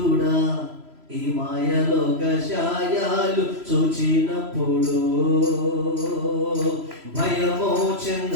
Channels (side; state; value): left; late; 3.0 ms